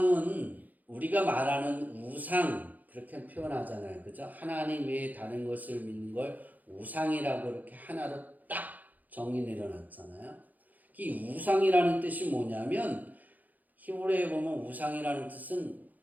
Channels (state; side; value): late; left; 0.081 ms